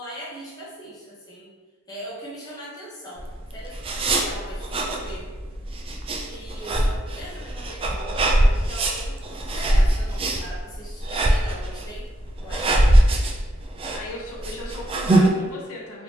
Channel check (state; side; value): normal; both; correlation 0.78